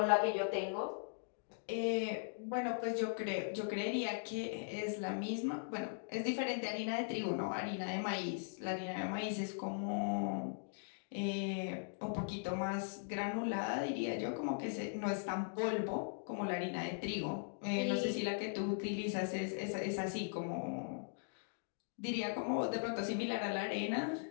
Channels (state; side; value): silent; right; digital silence